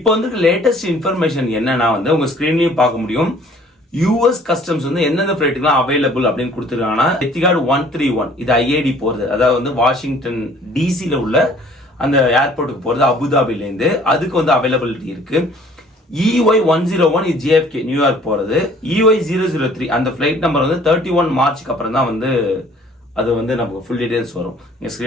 வந்து லேட்டஸ்ட் இன்ஃபர்மேஷன் என்னன்னா வந்து உங்க ஸ்கிரீன்லயும் பார்க்க முடியும். US கஸ்டம்ஸ் வந்து எந்தெந்த ஃபிளைட்டுக்குலாம் அவைலபிள் அப்படின்னு கொடுத்துருக்காங்கன்னா, எத்திகாட் 131 இது IAD போறது, அதாவது வந்து வாஷிங்டன் டிசில உள்ள அந்த ஏர்போர்ட்டுக்கு போறது அபுதாபில இருந்து, அதுக்கு வந்து அவைலபிலிட்டி இருக்கு. EY101 இது JFK நியூயார்க் போறது. EY003 அந்த ஃபிளைட் நம்பர் வந்து 31 மார்ச்சுக்கு அப்புறம் தான் வந்து அது வந்து நமக்கு ஃபுல் டீடைல்ஸ் வரும். நீங்க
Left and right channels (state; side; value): normal; both; correlation 0.55